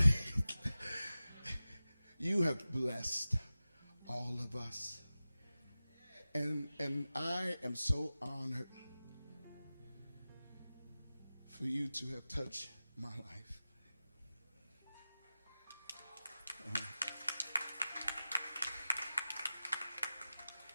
You have blessed all of us. And I am so honored for you to have touched my life.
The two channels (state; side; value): inverted; both; correlation -0.95